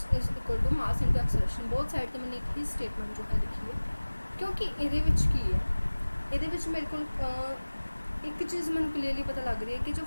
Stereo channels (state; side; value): inverted; both; correlation -1.00